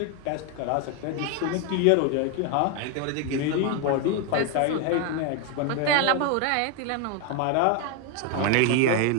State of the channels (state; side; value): different; both; correlation 0.01